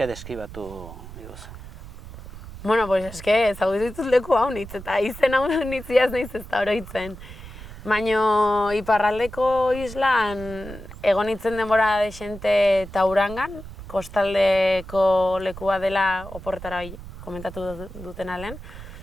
deskribatu diguzu. Bueno, pues eske ezagutu ditut leku hau nitz, eta izen hau nitziaz naiz ez da oroitzen. Baina iparraldeko islan egon nintzen denbora desente Taurangan, kostaldeko lekua dela oporretara komentatu duten alen.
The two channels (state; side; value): noise; right; rumble, 14 dB below the sound